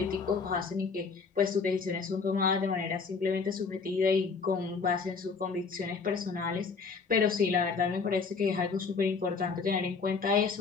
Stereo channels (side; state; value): right; quieter; 5.0 dB